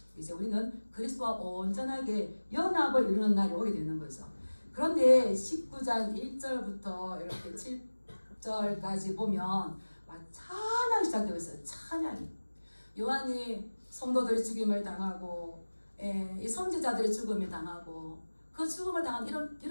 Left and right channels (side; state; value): both; inverted; correlation -1.00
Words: 이제 우리는 그리스도와 온전하게 연합을 이루는 날이 오게 되는 거죠. 그런데 19장 1절부터 이렇게 7절까지 보면 찬양이 시작되고 있어요. 찬양이. 요한이 성도들이 죽임을 당하고 이 선지자들이 죽음을 당하고 그 죽음을 당한